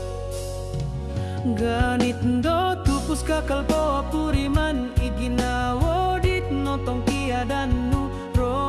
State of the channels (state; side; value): identical; both; correlation 1.00